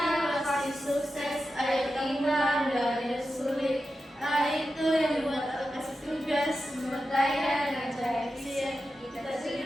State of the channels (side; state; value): both; normal; correlation 0.91